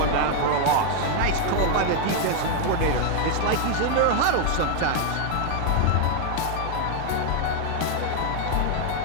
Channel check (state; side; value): different; both; correlation 0.00